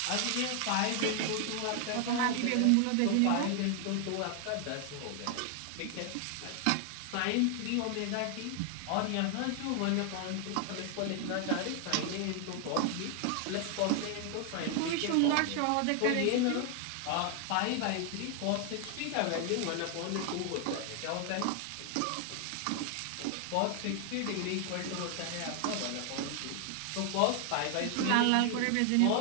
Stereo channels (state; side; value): different; both; correlation 0.00